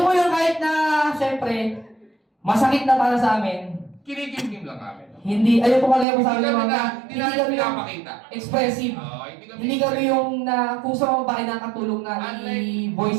po yung kahit na, syempre, masakit na para sa amin. Kinikimkim lang kami. Hindi, ayun po kalaya po sa amin mga, Hindi namin yung pinapakita. expressive. Oo, Hindi kami yung na, kung sa mga babae nakatulong na Unlike-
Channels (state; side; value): drops out; left; at 6.1 s